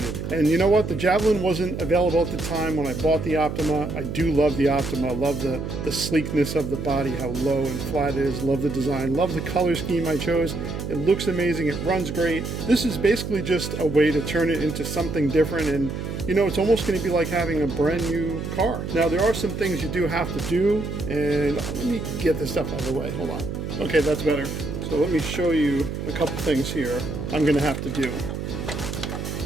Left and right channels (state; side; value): noise; right; hum, 5 dB below the sound